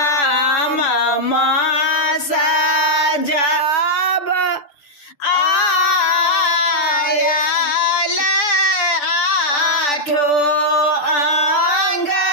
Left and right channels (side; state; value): right; late; 6.9 ms